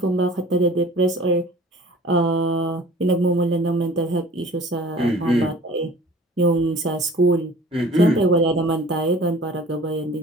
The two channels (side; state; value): both; normal; correlation 0.46